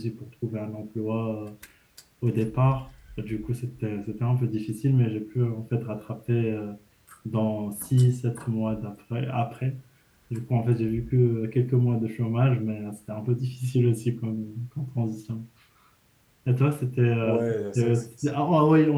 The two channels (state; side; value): identical; both; correlation 1.00